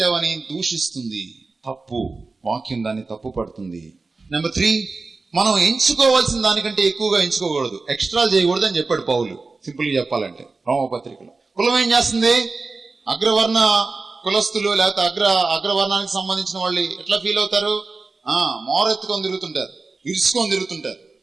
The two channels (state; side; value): quieter; left; 3.9 dB